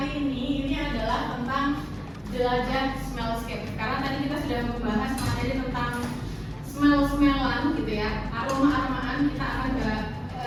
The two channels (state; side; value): identical; both; correlation 1.00